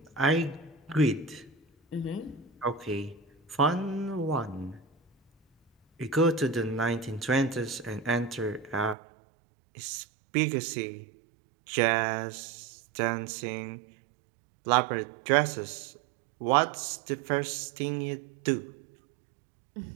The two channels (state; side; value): drops out; left; at 9.0 s